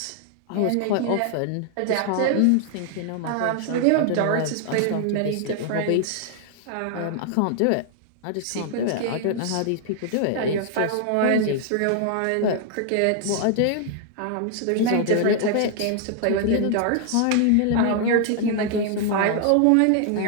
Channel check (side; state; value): both; different; correlation 0.00